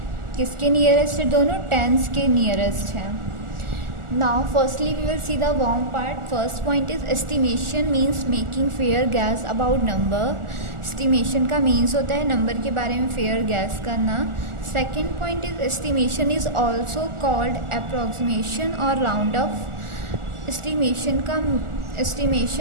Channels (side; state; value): left; late; 1.4 ms